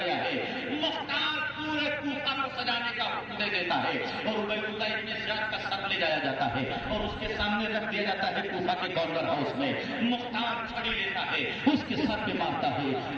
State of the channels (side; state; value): both; identical; correlation 1.00